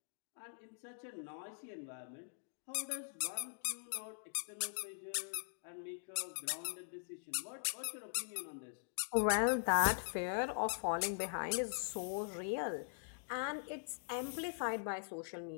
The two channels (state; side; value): silent; right; digital silence